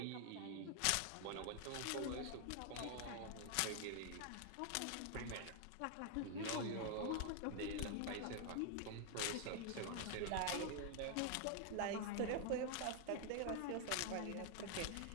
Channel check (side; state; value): both; different; correlation 0.00